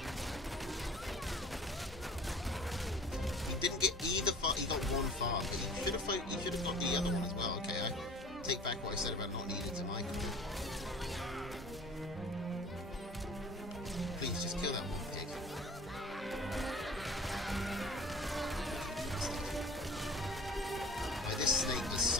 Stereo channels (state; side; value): normal; both; correlation 0.45